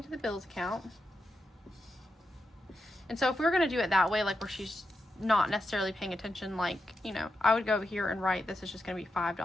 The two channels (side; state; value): both; normal; correlation 0.87